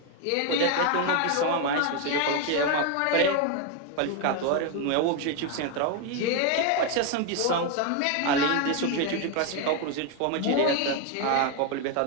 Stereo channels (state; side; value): different; both; correlation 0.01